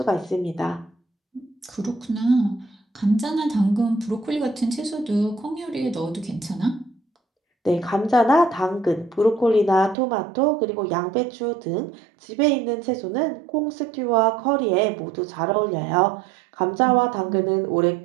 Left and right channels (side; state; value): left; drops out; at 10.0 s